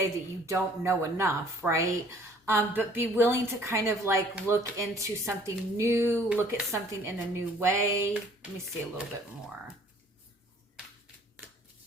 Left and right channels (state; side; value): normal; both; correlation 0.56